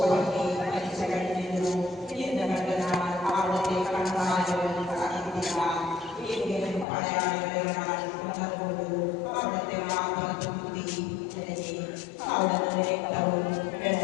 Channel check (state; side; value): drops out; right; at 6.9 s